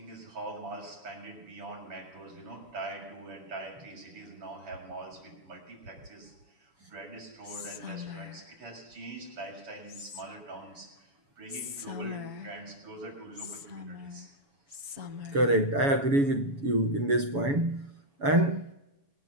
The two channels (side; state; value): left; late; 7.1 ms